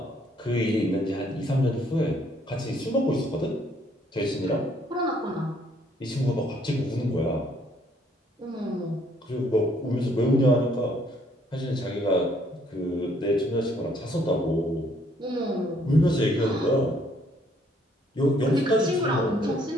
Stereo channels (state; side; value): normal; both; correlation 0.65